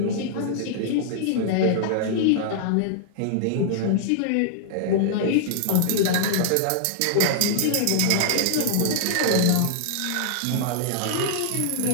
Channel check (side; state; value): both; different; correlation -0.01